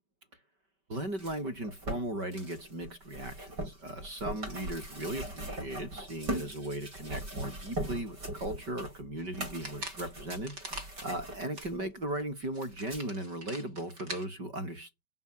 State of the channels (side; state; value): left; late; 5.2 ms